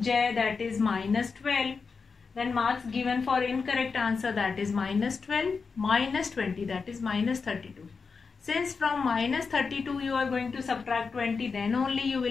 J, that is minus 12. Then marks given for incorrect answer, that is minus 12 minus 20, that is minus 32. Since from minus 32 you are going to subtract 20, then only you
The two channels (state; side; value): quieter; right; 5.0 dB